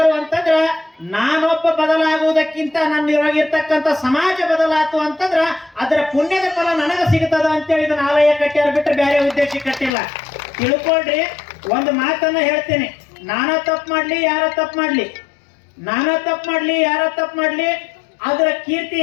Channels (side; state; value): right; drops out; at 9.9 s